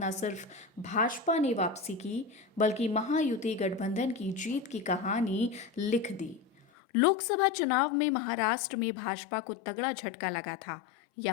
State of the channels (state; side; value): drops out; right; at 6.7 s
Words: सिर्फ भाजपा ने वापसी की, बल्कि महायुति गठबंधन की जीत की कहानी लिख दी। लोकसभा चुनाव में महाराष्ट्र में भाजपा को तगड़ा झटका लगा था।